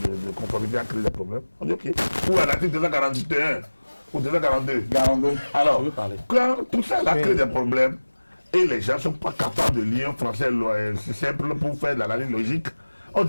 conformité a créé des problèmes, on dit ok. Ou à l'article 241 ou 242. Alors, quand tout ça a créé des problèmes et les gens ne sont pas capables de lire un français simple pour faire de l'analyse logique, on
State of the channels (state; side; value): inverted; both; correlation -1.00